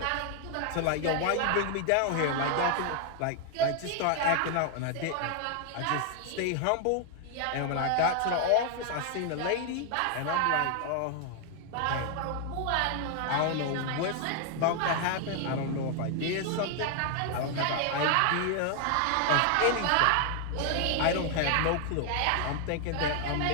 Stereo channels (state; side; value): different; both; correlation 0.00